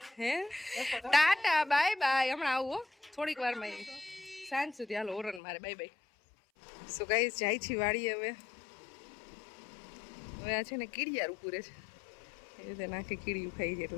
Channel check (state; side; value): drops out; right; at 5.4 s